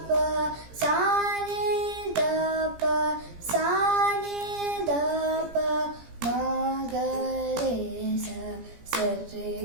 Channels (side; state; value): left; late; 17 ms